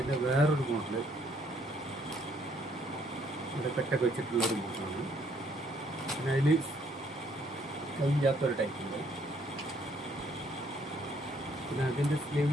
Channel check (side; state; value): both; normal; correlation 0.66